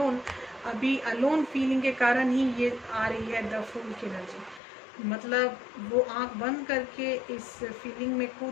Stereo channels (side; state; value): right; drops out; at 4.6 s